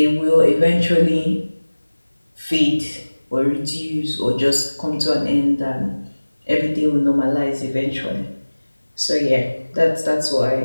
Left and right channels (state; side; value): inverted; both; correlation -1.00